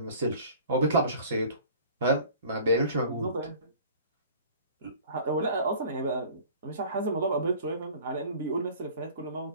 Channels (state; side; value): inverted; both; correlation -0.46